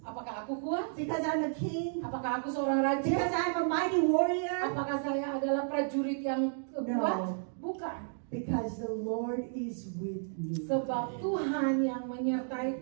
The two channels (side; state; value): left; silent; digital silence